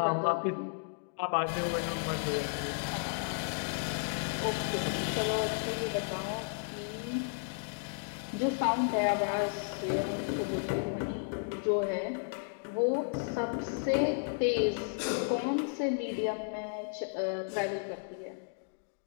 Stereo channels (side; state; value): right; silent; digital silence